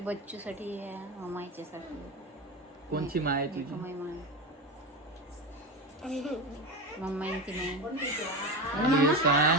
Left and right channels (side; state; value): both; normal; correlation 0.21